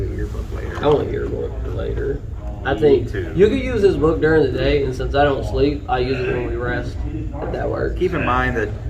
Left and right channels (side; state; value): both; identical; correlation 1.00